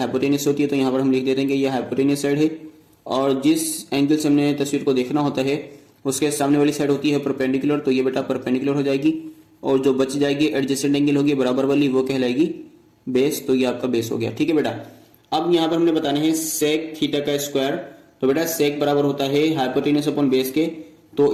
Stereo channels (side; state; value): both; identical; correlation 1.00